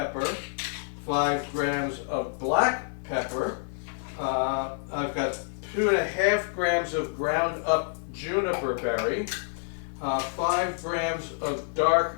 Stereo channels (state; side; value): silent; right; 55 dB below the other